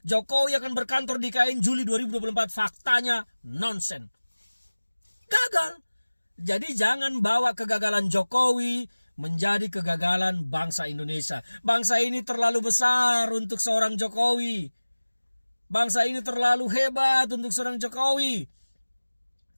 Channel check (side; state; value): both; inverted; correlation -1.00